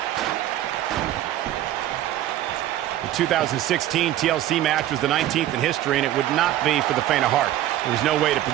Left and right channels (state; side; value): quieter; left; 13.2 dB